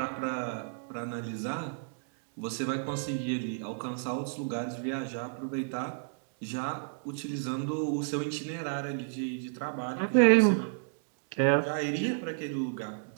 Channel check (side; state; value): left; silent; digital silence